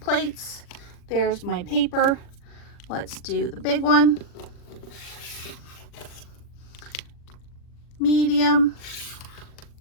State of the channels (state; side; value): late; right; 40 ms